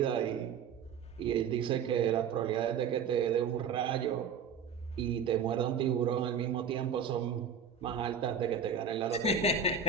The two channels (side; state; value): left; quieter; 6.2 dB